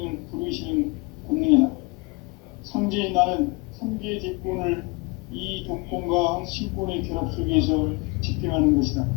부르시는 권능이다. 상제인 나는 3개의 대권을 이 도권과 신권의 결합 속에서 집행하는 것이다.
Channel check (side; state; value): right; quieter; 26.7 dB